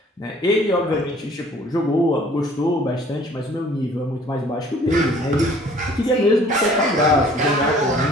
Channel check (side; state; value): both; normal; correlation 0.54